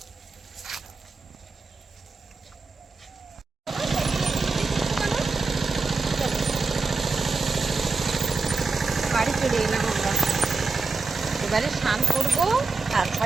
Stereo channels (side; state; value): left; quieter; 4.3 dB